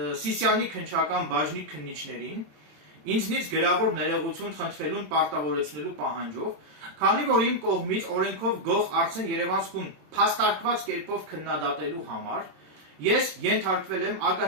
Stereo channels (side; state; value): left; late; 27 ms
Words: Սիսիանի քննչական բաժնի քննիչներին ինձնից գրավոր ներողություն խնդրելուն պարտավորեցնելու պահանջով, քանի որ իմ կողմից օրենքով գող Արսեն Երևանսկուն փաստարկված կերպով քննադատելու համար ես ենթարկվել եմ